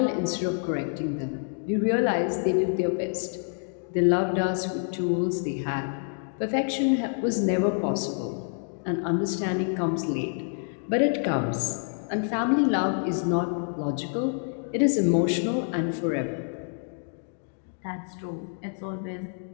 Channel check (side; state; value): right; silent; 55 dB below the other